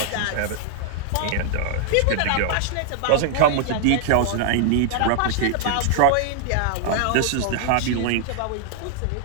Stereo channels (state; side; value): different; both; correlation -0.01